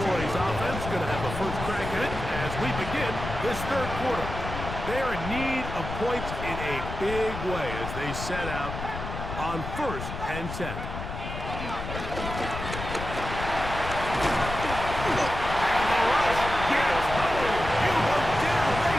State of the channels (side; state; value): left; noise; rumble, 7 dB below the sound